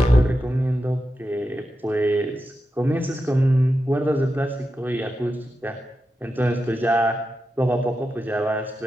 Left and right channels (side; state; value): both; normal; correlation 0.89